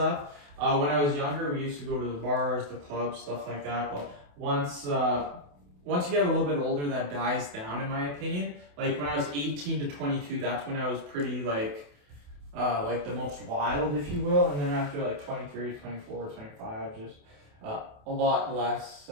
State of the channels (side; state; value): left; late; 28 ms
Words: When I was younger, we used to go to the bars, the clubs, stuff like that. But once you get a little bit older, that dies down, in my opinion. Like when I was 18 to 22, that's when I was pretty like the most wild, if you will. And then after like 23, 24, 25, just a lot less,